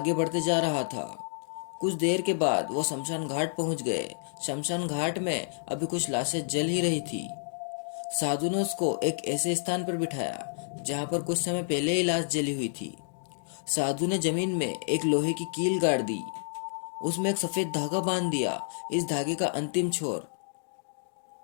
बढ़ते जा रहा था। कुछ देर के बाद वो शमशान घाट पहुंच गए। शमशान घाट में अभी कुछ लाशें जल ही रही थी। साधु ने उसको एक ऐसे स्थान पर बिठाया जहां पर कुछ समय पहले ही लाश जली हुई थी। साधु ने जमीन में एक लोहे की कील गाड़ दी। उसमें एक सफेद धागा बांध दिया। इस धागे का अंतिम छोर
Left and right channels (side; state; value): right; silent; digital silence